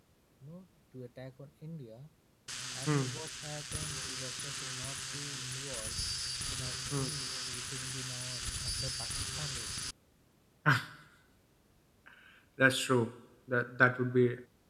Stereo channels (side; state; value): both; identical; correlation 1.00